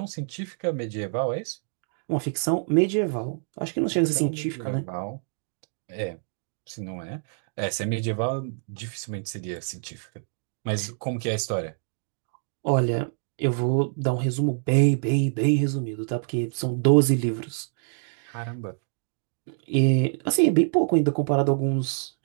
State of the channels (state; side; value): silent; left; digital silence